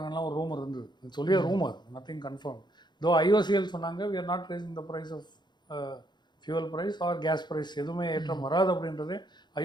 ஒரு ரூமர் இருந்தது. சொல்லிய ரூமர், நத்திங் கன்ஃபார்ம். தோ IOCL சொன்னாங்க we are not raising the price of fuel price or gas price, எதுவுமே ஏற்றம் வராது அப்படின்றது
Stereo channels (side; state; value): right; late; 0.21 ms